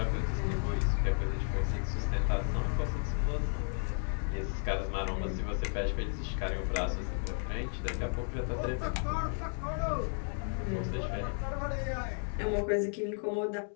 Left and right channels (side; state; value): right; silent; 55 dB below the other